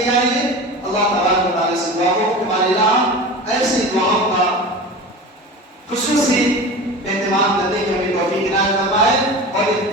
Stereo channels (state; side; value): normal; both; correlation 0.32